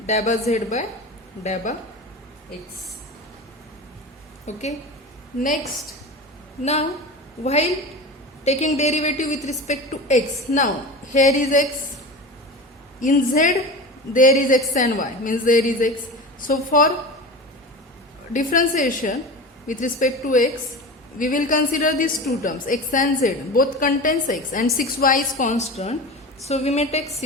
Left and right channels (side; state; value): both; normal; correlation 0.30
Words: dabba z by dabba x. Okay. Next, now while taking derivative with respect to x, now here is x, in z there is x and y, means there is x. So for differentiation with respect to x, we will consider these two terms, x and z, both contains x, and 6y is constant. So we may take